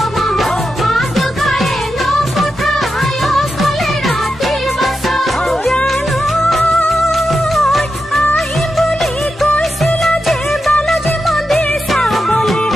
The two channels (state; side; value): normal; both; correlation 0.88